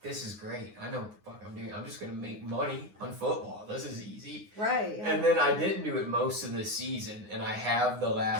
this is great. I know what the fuck I'm doing. I'm just going to make money on football. This is easy. Right. Yeah. And then I didn't do it most of the season. And I have the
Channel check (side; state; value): left; late; 9.6 ms